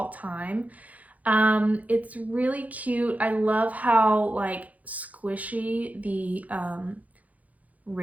time. It's really cute. I love how like squishy the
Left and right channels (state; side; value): late; left; 0.074 ms